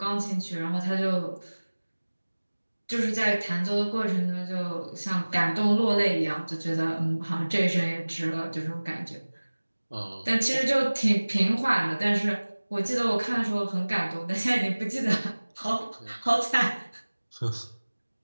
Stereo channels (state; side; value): inverted; both; correlation -1.00